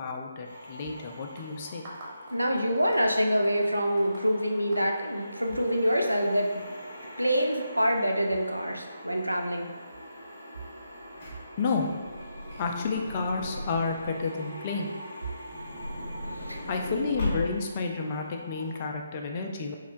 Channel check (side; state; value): both; inverted; correlation -0.83